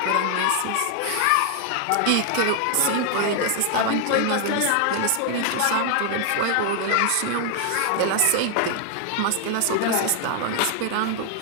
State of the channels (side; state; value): both; different; correlation 0.00